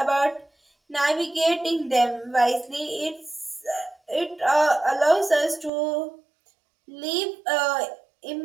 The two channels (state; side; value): drops out; left; at 5.7 s